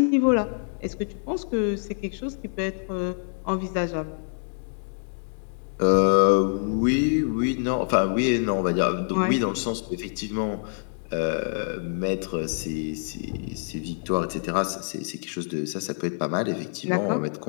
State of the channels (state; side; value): silent; right; digital silence